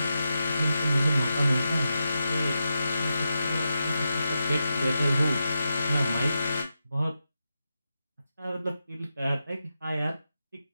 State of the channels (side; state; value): both; inverted; correlation -0.88